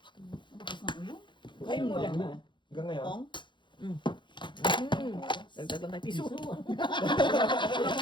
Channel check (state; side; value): late; right; 0.23 ms